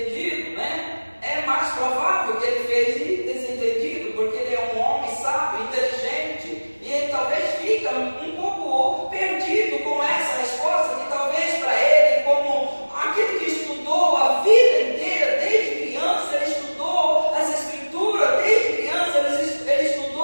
né? É mais provável que ele fez desentendido, porque ele é um homem sábio, inteligente, e ele talvez fica um pouco perdido com essa resposta, que talvez para ele, como aquele que estudou a vida inteira, desde criança, ele estudou as Escrituras, desde criança ele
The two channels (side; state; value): both; inverted; correlation -1.00